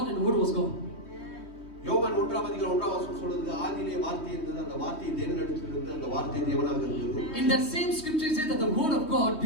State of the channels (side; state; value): right; late; 3.2 ms